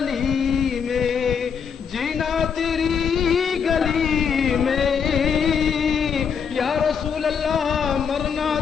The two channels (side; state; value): right; quieter; 6.8 dB